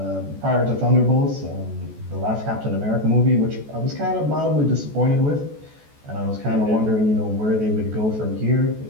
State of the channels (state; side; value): late; left; 14 ms